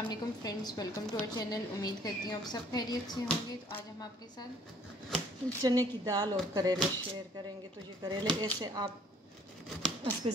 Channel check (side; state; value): both; normal; correlation 0.59